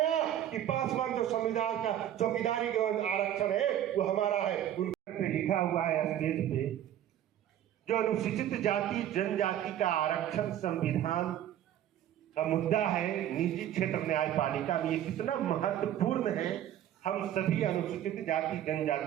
कि पासवान जो संविधान का चौकीदारी का आरक्षण है वो हमारा है। उनका लिखा हुआ है स्टेज पे, जो अनुसूचित जाति जनजाति का आरक्षण संविधान का मुद्दा है निजी क्षेत्र न्यायपालिका में, ये कितना महत्वपूर्ण है हम सभी अनुसूचित जाति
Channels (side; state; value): left; quieter; 11.3 dB